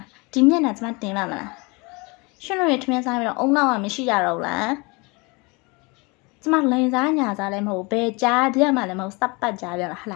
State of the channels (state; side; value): quieter; right; 27.9 dB